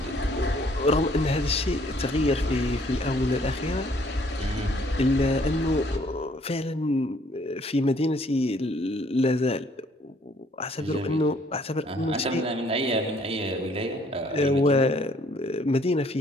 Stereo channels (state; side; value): normal; both; correlation 0.62